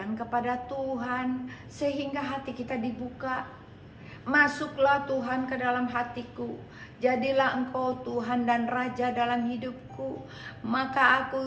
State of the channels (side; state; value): both; identical; correlation 1.00